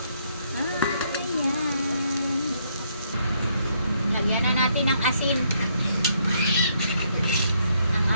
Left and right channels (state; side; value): inverted; both; correlation -0.72